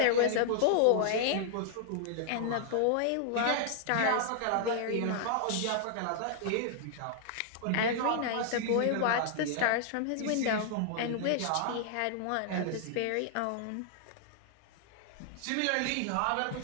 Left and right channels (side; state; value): both; different; correlation 0.00